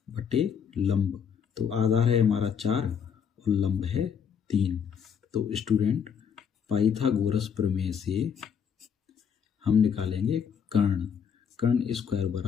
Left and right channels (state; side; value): quieter; right; 7.3 dB